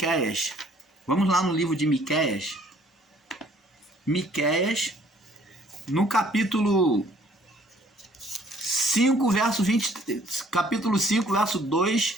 Vamos lá no livro de Miqueias. Miqueias, no capítulo 5, verso 20, capítulo 5, verso 2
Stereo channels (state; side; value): normal; both; correlation 0.60